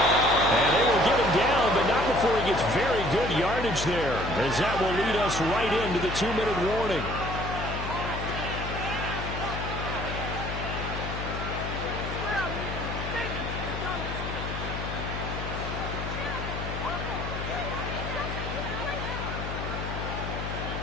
And they will get him down, but not before he gets very good yardage there, as that will lead us right into the 2-minute warning.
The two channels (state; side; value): noise; left; hum, 5 dB below the sound